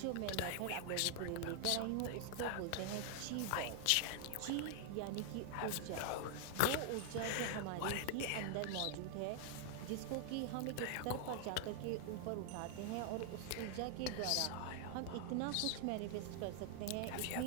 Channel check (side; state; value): both; different; correlation 0.00